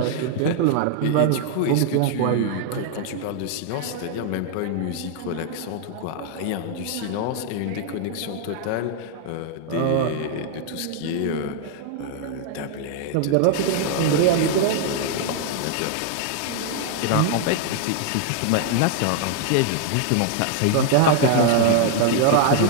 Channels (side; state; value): both; different; correlation 0.00